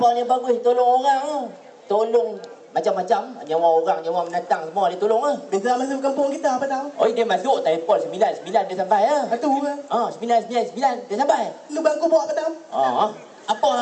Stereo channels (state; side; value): identical; both; correlation 1.00